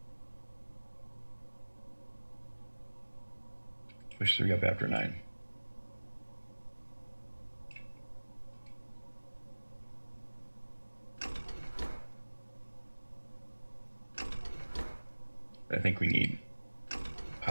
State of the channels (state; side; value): inverted; both; correlation -1.00